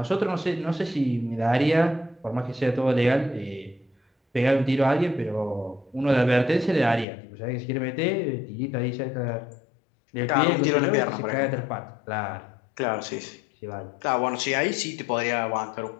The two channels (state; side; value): drops out; right; at 7.1 s